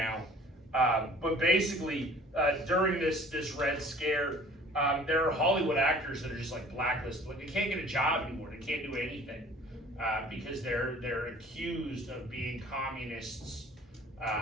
but basically during this Red Scare, there are Hollywood actors that are just like blacklisted. Like, they can't get a job anymore. They can't do anything because they're accused of being communists.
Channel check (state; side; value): normal; both; correlation 0.50